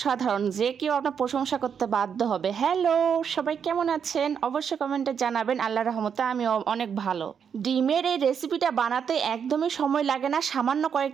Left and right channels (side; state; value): left; quieter; 7.3 dB